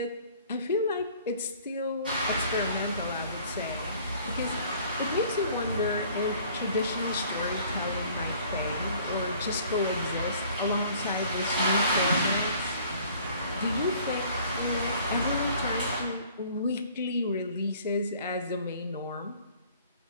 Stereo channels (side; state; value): both; inverted; correlation -0.54